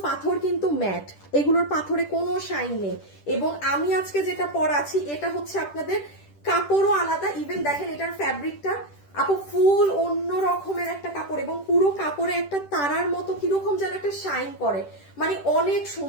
পাথর কিন্তু ম্যাট, এগুলোর পাথরে কোনো শাইন নেই। এবং আমি আজকে যেটা পরাচ্ছি এটা হচ্ছে আপনাদের কাপড়ও আলাদা। ইভেন দেখেন এটার ফ্যাব্রিকটা আপু ফুল অন্য রকমের একটা কাপড়, এবং পুরো কাপড়ে একটা তারার মতো কিরকম যেন একটা শাইন করে, মানে অনেক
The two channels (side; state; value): right; late; 10 ms